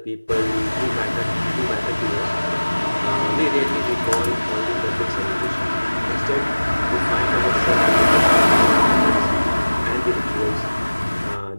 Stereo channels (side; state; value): both; inverted; correlation -1.00